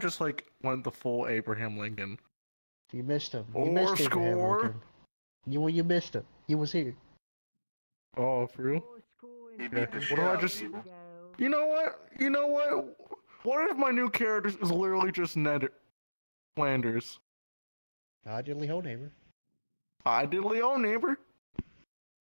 like went the full Abraham Lincoln? You missed him. You Or missed Abraham score. Lincoln. You missed him. He was here. Oh, for real? He beat the What shit if I out of just? people. You know what? You know what? What if my new character is literally just Ned Flanders? I did Lee neighbor. I did Leo neighbor.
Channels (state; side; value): inverted; both; correlation -1.00